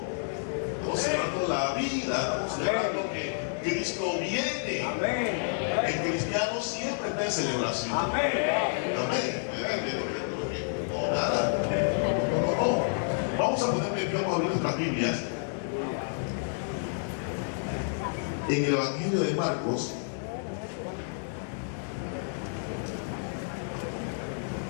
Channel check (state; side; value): silent; right; digital silence